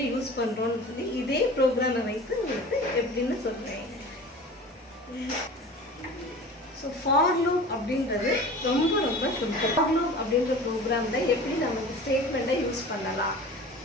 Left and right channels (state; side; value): normal; both; correlation 0.38